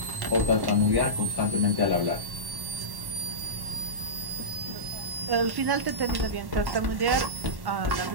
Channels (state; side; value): late; left; 1.1 ms